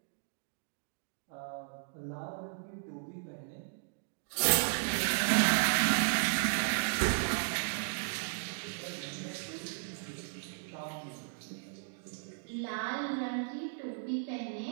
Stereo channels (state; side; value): silent; left; digital silence